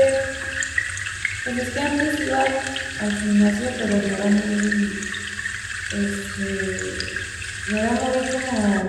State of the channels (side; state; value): both; identical; correlation 1.00